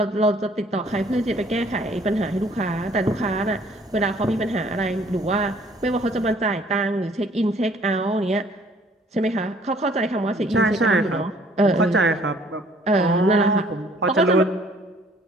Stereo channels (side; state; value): both; normal; correlation 0.59